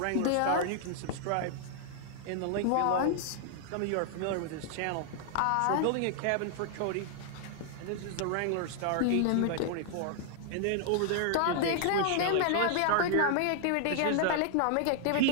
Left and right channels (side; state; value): both; different; correlation 0.00